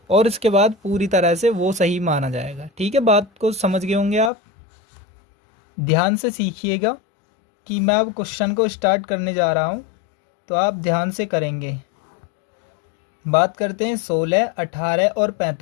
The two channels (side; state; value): right; drops out; at 4.3 s